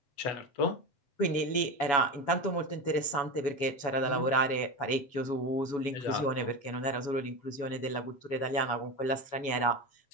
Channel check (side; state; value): right; late; 7.1 ms